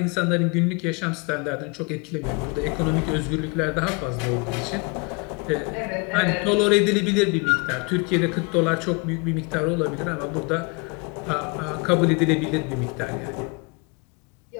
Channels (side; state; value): right; quieter; 30.4 dB